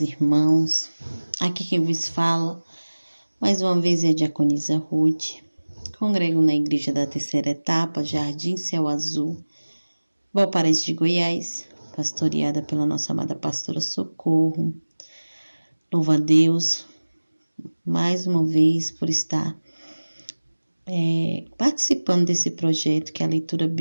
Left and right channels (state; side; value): inverted; both; correlation -1.00